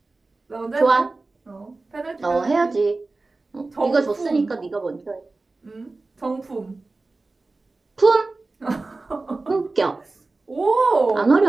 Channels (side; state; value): left; quieter; 3.4 dB